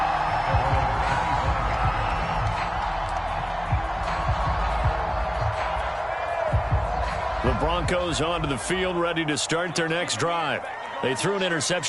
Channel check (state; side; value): identical; both; correlation 1.00